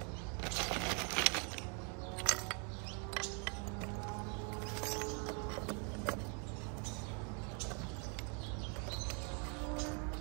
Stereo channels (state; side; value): quieter; left; 37.5 dB